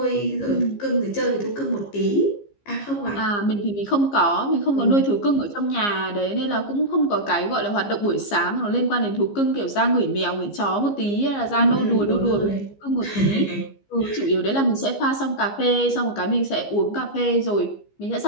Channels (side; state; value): right; late; 15 ms